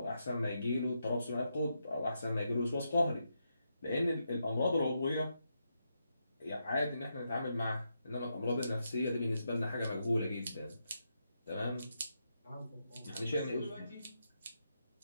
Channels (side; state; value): both; inverted; correlation -0.83